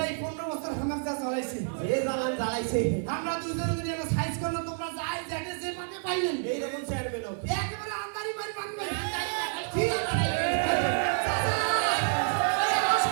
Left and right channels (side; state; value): left; silent; digital silence